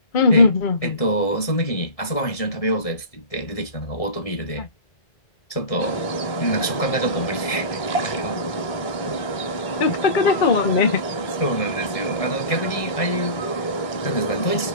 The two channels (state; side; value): late; right; 1.7 ms